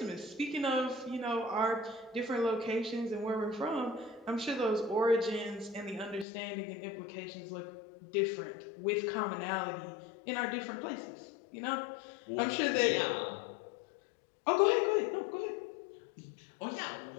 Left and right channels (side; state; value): right; drops out; at 6.2 s